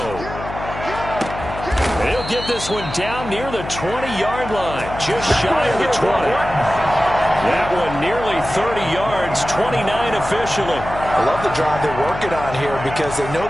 He'll get this one down near the 20-yard line, just shy of the 20. That one nearly 30 yards, 29 officially. I love the drive they're working on here because they know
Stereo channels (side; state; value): left; noise; hum, 10 dB below the sound